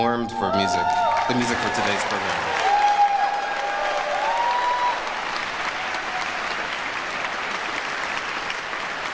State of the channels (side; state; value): both; identical; correlation 1.00